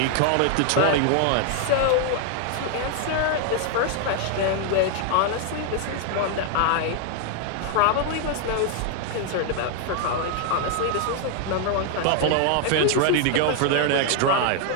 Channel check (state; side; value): different; both; correlation 0.00